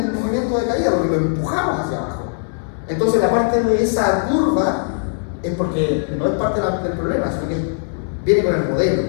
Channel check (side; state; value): right; silent; digital silence